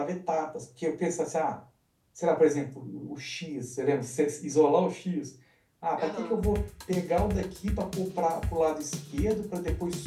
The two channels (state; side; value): identical; both; correlation 1.00